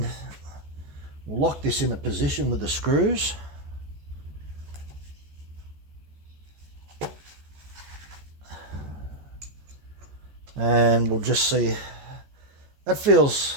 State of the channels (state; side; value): late; left; 14 ms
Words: we'll lock this in a position with the screws. And we'll just see. That